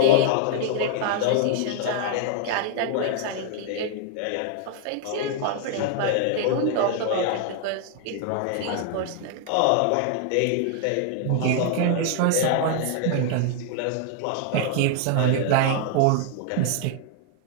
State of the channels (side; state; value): both; different; correlation 0.00